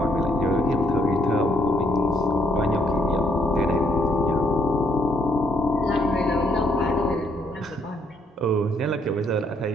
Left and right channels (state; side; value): normal; both; correlation 0.70